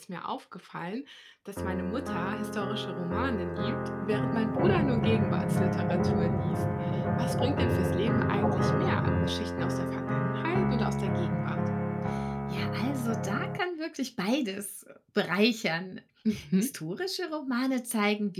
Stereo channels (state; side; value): identical; both; correlation 1.00